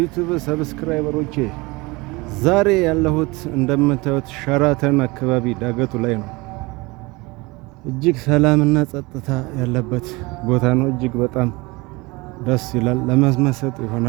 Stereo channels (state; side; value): quieter; left; 24.0 dB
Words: ሰብስክራይበሮቼ፣ ዛሬ ያለሁት እንደምታዩት ሸራተን አካባቢ ዳገቱ ላይ ነው። እጅግ ሰላምና ጸጥታ ያለበት ቦታ ነው። እጅግ በጣም ደስ ይላል። ለመመሰጥ